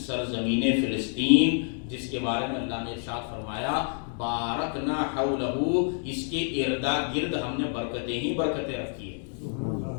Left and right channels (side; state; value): right; silent; 57 dB below the other